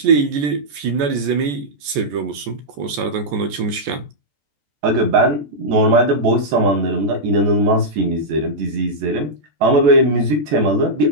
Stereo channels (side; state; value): left; late; 14 ms